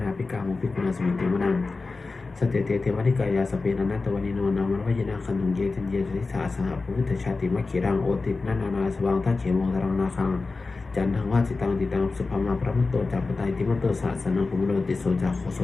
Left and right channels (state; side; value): quieter; right; 3.8 dB